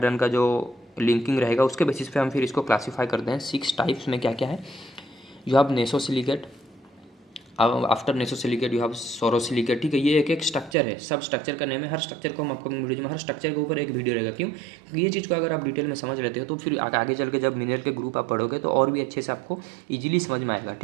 का जो लिंकिंग रहेगा उसके बेसिस पे हम फिर इसको क्लासीफाई करते हैं। 6 टाइप्स में क्या क्या है, you have nesosilicate, after nesosilicate you have sorosilicate. ठीक है, ये एक एक स्ट्रक्चर है, सब स्ट्रक्चर का नेम है। हर स्ट्रक्चर को हम आपको वीडियो में, हर स्ट्रक्चर के ऊपर एक वीडियो रहेगा। क्यों, क्योंकि ये चीज़ को अगर आप डिटेल में समझ लेते हो तो फिर आगे चल के जब मिनरल के ग्रुप आप पढ़ोगे तो और भी अच्छे से आपको ईजिली समझ में आएगा।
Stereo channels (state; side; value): drops out; left; at 10.8 s